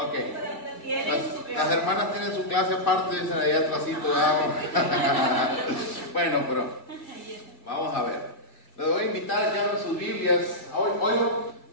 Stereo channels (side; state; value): right; late; 2.1 ms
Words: Las hermanas tienen su clase aparte, dicen ahí atrásito. Bueno, pero vamos a ver. Les voy a invitar a que abran sus Biblias. Hoy,